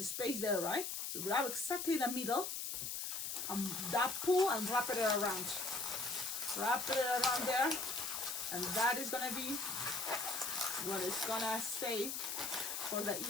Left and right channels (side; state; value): left; noise; hiss, 3 dB below the sound